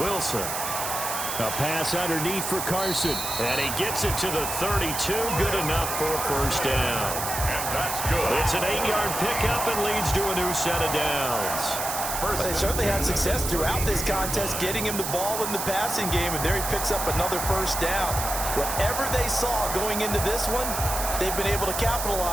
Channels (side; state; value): right; noise; hiss, 4 dB below the sound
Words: Wilson. A pass underneath for Carson. And he gets it to the 32. Good enough for a first down. That's good. It's an 8-yard pickup and leads to a new set of downs. Well, they certainly had success throughout this contest getting him the ball in the passing game, and there he picks up another first down. Whatever they saw going into this one, they've been able to